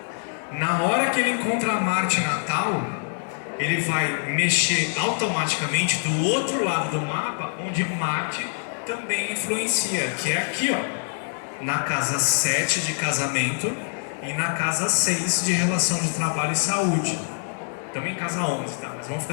Na hora que ele encontra Marte natal, ele vai mexer automaticamente do outro lado do mapa, onde Marte também influencia, que é aqui, ó, na casa 7 de casamento e na casa 6 de relação de trabalho e saúde. Também em casa 11, tá? Mas vamos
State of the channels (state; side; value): silent; right; digital silence